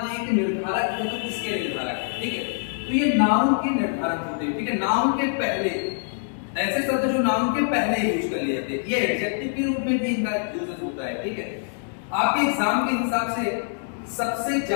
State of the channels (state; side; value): silent; right; digital silence